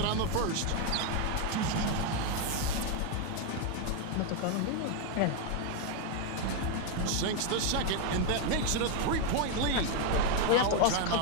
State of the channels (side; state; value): both; different; correlation 0.01